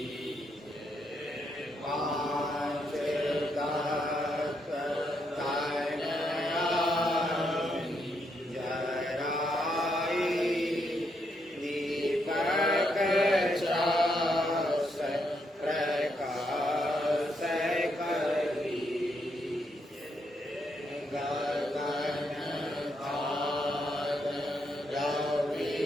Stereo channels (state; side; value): normal; both; correlation 0.78